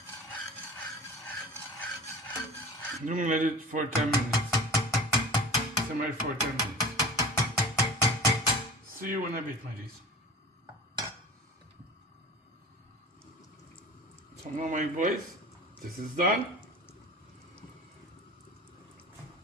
I'm gonna let it for 10 minutes. Simmer for 10 minutes. See you in a bit, my dears. So now, my boys, this is done.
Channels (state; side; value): normal; both; correlation 0.37